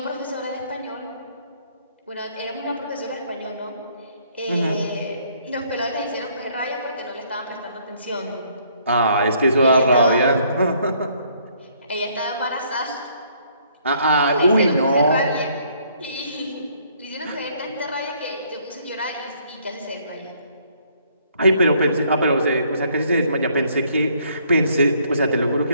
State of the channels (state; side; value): inverted; both; correlation -0.65